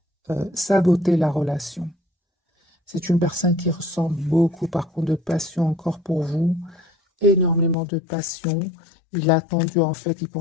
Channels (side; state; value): right; drops out; at 7.8 s